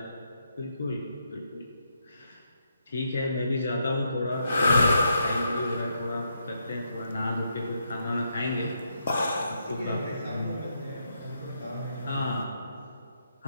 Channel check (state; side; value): inverted; both; correlation -0.79